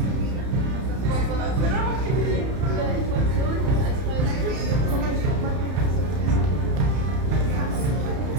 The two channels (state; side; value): late; left; 31 ms